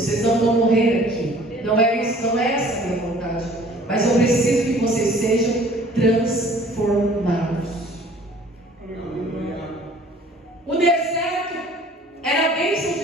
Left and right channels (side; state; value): both; normal; correlation 0.52